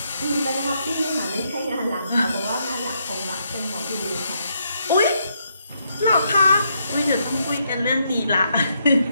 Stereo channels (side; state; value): both; inverted; correlation -0.77